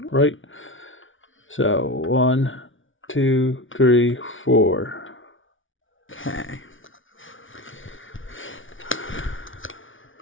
right. So 1, 2, 3, 4. Okay.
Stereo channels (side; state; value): right; late; 0.57 ms